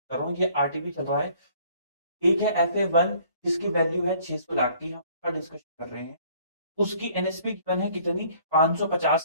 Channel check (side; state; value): both; inverted; correlation -0.58